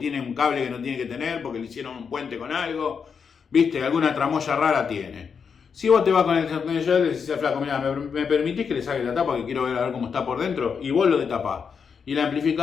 un cable que no tiene que tener porque le hicieron un puente con algo. ¿Viste? Alguna tramoya rara tiene. Si vos te vas con el destornillador y le decís al flaco, mira, ¿me permitís que le saque la tapa que quiero ver a ver cómo está por dentro? Y vos lo detapás. Y el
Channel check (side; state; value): right; quieter; 6.3 dB